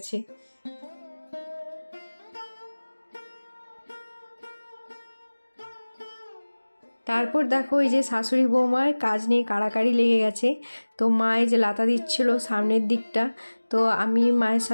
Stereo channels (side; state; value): both; inverted; correlation -1.00